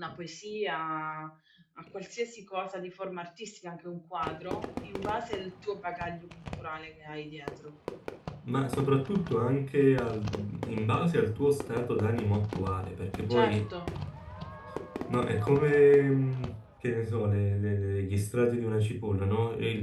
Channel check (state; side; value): identical; both; correlation 1.00